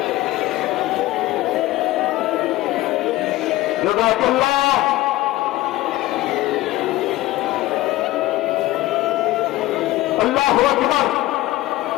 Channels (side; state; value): right; quieter; 17.3 dB